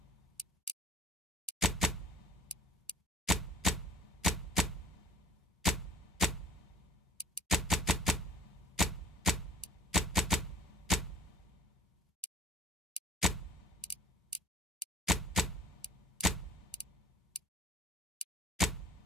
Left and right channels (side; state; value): both; normal; correlation 0.51